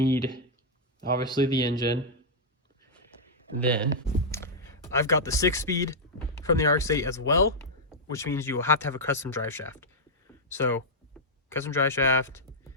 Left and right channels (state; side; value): normal; both; correlation -0.07